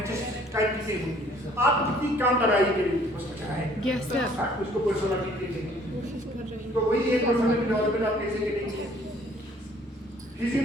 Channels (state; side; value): normal; both; correlation 0.58